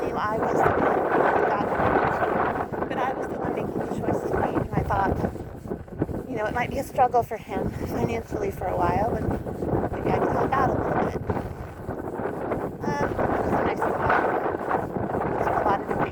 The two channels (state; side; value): identical; both; correlation 1.00